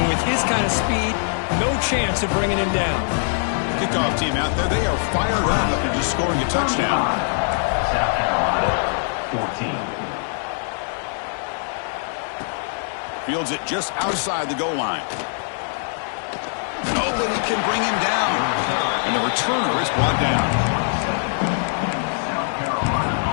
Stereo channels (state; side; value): silent; right; digital silence